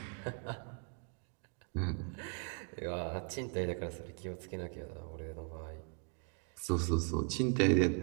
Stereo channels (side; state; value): left; quieter; 39.1 dB